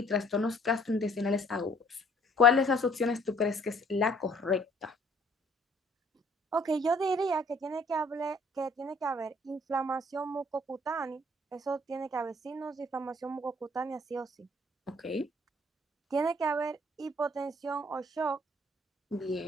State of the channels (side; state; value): both; normal; correlation 0.59